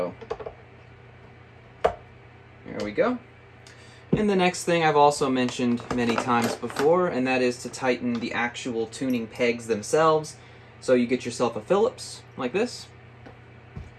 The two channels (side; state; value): both; identical; correlation 1.00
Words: there we go. And the next thing I've also mentioned many times before, and that is to tighten the actual tuning pegs themselves. So you get yourself a Phillips, like this.